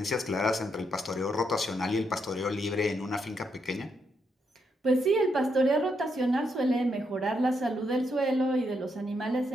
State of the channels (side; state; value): both; normal; correlation 0.79